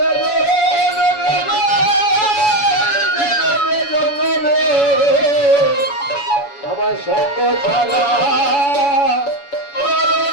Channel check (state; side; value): late; right; 7.1 ms